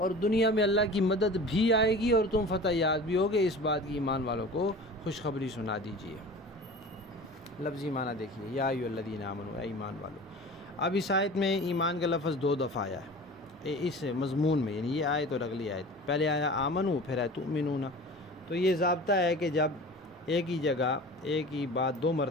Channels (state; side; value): normal; both; correlation 0.38